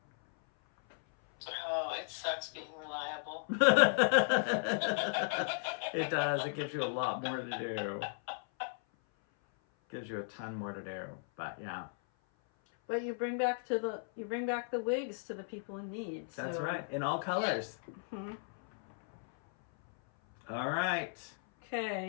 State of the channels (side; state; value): right; silent; 54 dB below the other